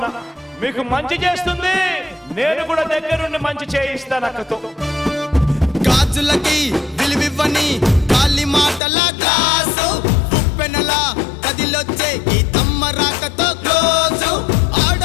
మీకు మంచి చేస్తుంది, నేను కూడా దగ్గరుండి మంచి చేయిస్తాను అక్కతో. గాజులకి విలువివ్వని గాలి మాటల గ్లాసు ఉప్పెనల కదిలొచ్చే గీతమ్మ రాకతో క్లోజు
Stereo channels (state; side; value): drops out; right; at 8.8 s